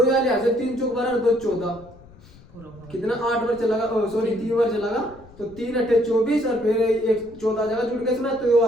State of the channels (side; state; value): left; noise; rumble, 23 dB below the sound